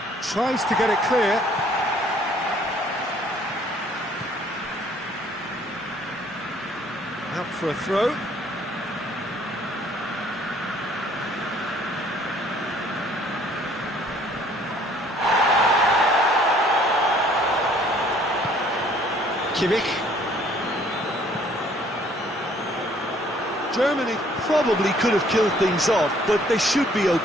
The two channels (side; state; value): both; normal; correlation 0.60